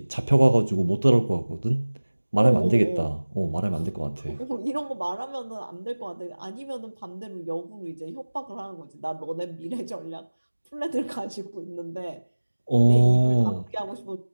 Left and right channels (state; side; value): inverted; both; correlation -1.00